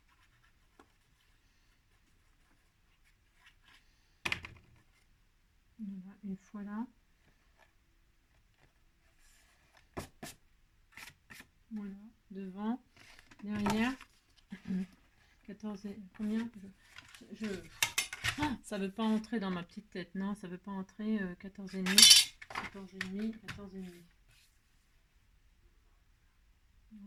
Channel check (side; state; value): both; identical; correlation 1.00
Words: Voilà, une fois là. Voilà, devant, derrière. 14 et combien Ah, ça veut pas entrer dans ma petite tête. Non, ça veut pas entrer 14,5. 14,5, 14,5.